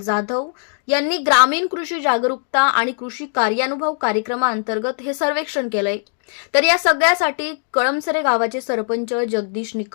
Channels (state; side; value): silent; right; 56 dB below the other